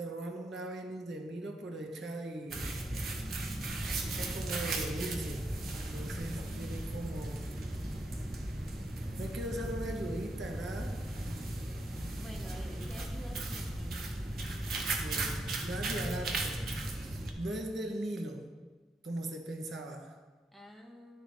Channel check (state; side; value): normal; both; correlation 0.80